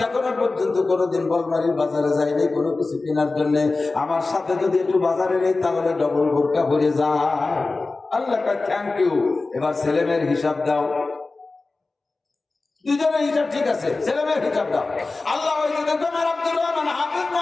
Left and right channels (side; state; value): right; quieter; 3.5 dB